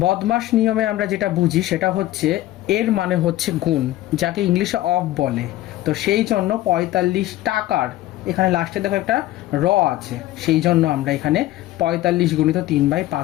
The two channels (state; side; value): quieter; right; 15.4 dB